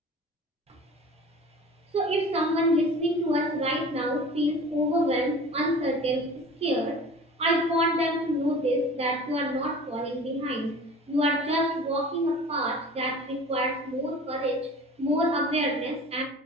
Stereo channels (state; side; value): normal; both; correlation 0.41